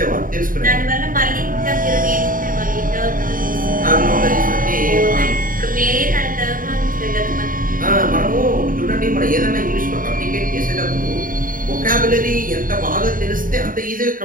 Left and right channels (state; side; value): late; left; 0.40 ms